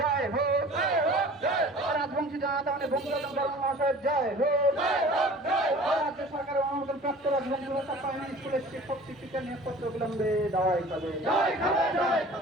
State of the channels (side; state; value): both; normal; correlation 0.44